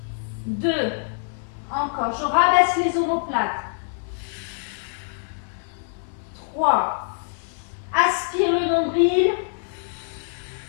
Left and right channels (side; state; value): right; silent; 62 dB below the other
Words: 2. Encore. Je rabaisse les omoplates. 3. Aspire le nombril.